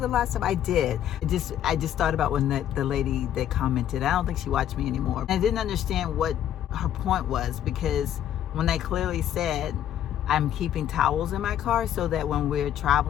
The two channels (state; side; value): quieter; right; 10.8 dB